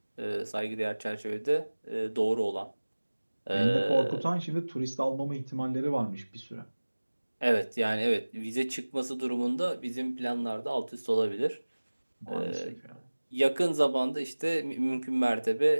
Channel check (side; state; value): both; inverted; correlation -1.00